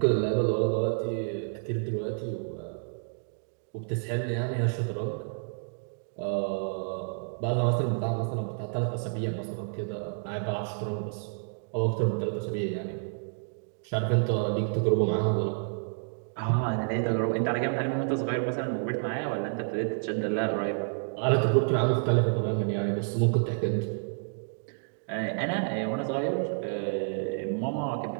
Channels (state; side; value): silent; left; digital silence